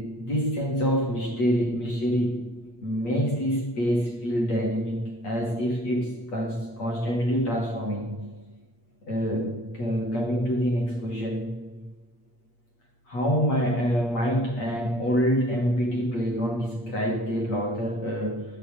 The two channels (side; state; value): right; late; 8.5 ms